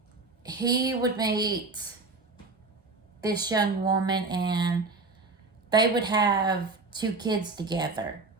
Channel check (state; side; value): quieter; left; 3.7 dB